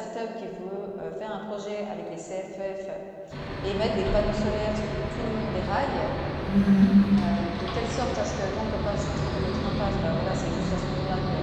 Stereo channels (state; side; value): identical; both; correlation 1.00